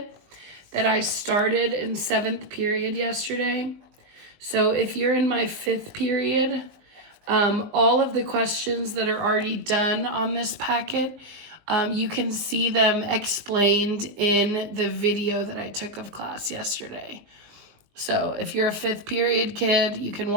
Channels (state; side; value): late; left; 19 ms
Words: that I started in 7th period yesterday. So if you're in my 5th period, all of the questions that are already done on this packet, you can see them explained in the video that I took of class yesterday. So if you're a 5th period kid, you can